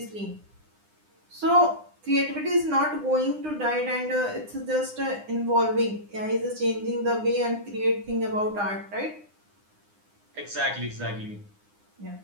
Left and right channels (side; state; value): left; late; 9.8 ms